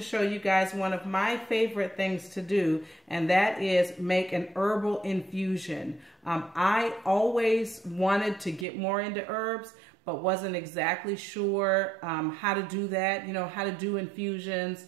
you guys one of my favorite things to do, and that is make an herbal infusion. I always wanted to get more into herbs, but wasn't exactly sure how to do that, how to do infusions.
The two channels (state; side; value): drops out; left; at 8.7 s